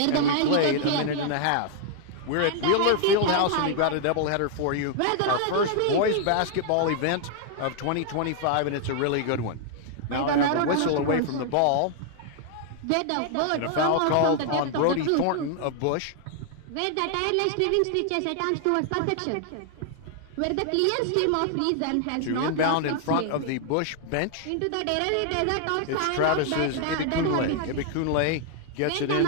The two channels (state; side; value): different; both; correlation 0.00